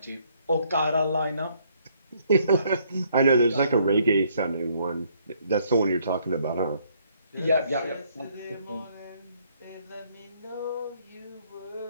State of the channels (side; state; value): both; inverted; correlation -0.67